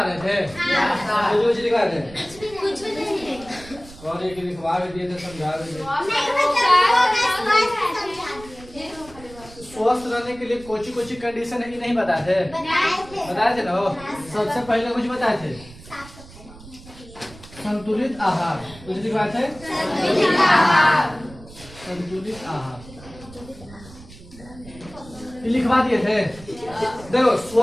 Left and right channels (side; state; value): right; noise; rumble, 19 dB below the sound